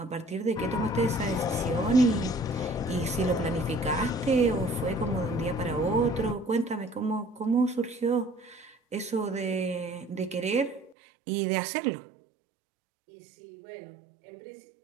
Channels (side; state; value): left; drops out; at 11.0 s